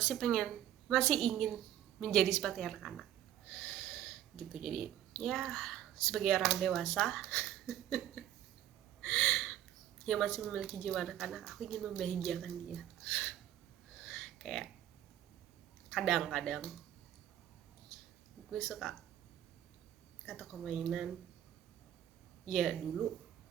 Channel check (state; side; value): quieter; left; 11.7 dB